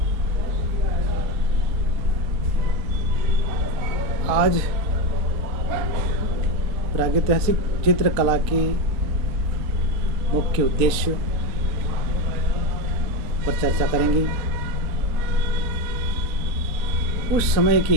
आज प्रागैतिहासिक चित्रकला के मुख्य उद्देश्य पर चर्चा करेंगे। उस समय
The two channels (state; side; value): late; left; 3.8 ms